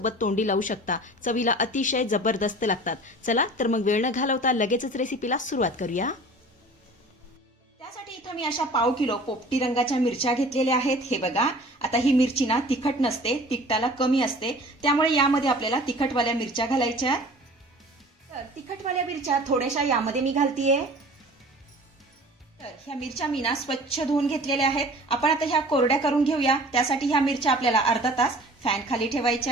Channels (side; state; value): both; normal; correlation 0.45